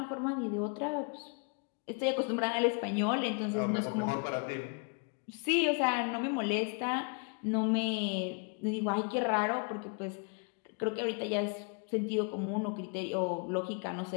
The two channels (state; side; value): quieter; right; 38.3 dB